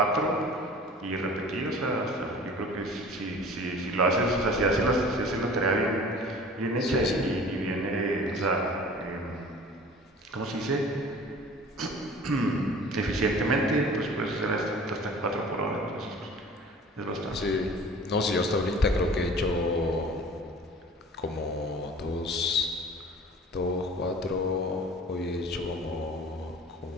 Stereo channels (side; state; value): both; normal; correlation 0.44